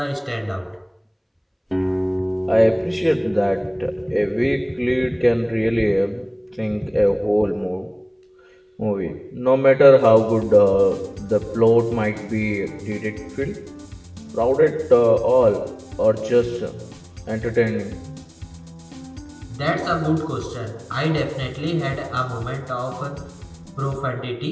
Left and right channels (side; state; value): both; identical; correlation 1.00